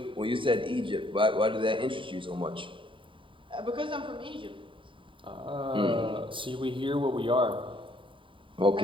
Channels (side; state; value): left; late; 0.25 ms